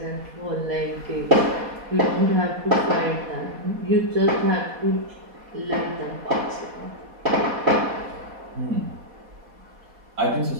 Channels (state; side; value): late; left; 4.1 ms